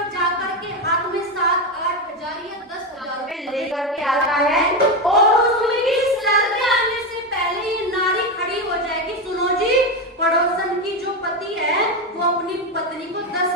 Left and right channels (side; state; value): both; normal; correlation 0.13